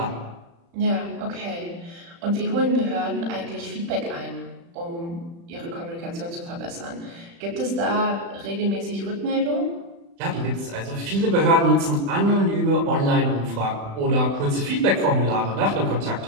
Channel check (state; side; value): late; left; 35 ms